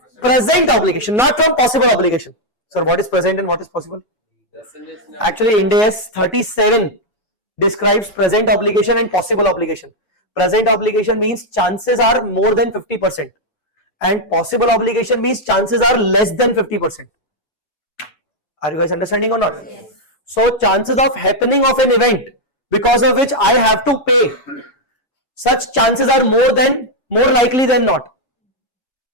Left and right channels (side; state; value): right; late; 7.1 ms